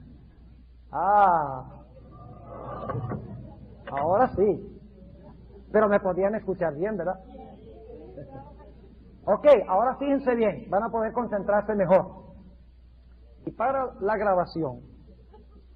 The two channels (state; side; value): identical; both; correlation 1.00